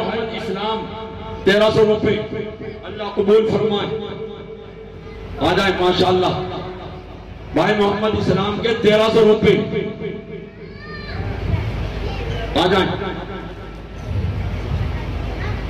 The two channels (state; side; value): identical; both; correlation 1.00